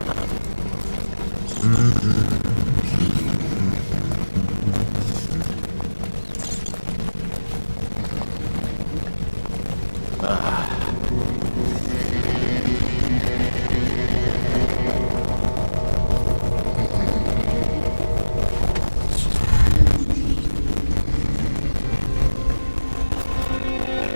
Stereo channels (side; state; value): both; inverted; correlation -1.00